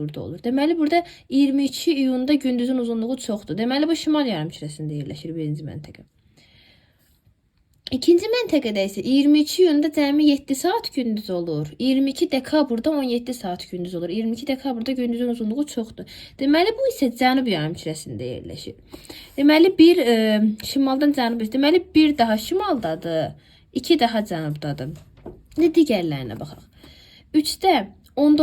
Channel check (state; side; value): identical; both; correlation 1.00